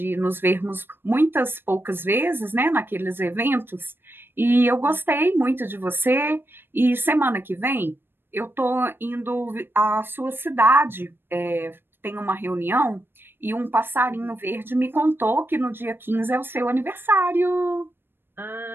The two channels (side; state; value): left; late; 0.10 ms